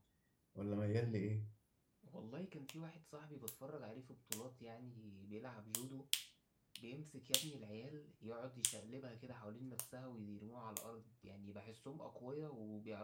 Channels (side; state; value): both; identical; correlation 1.00